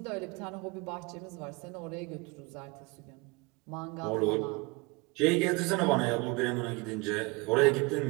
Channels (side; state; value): left; quieter; 26.0 dB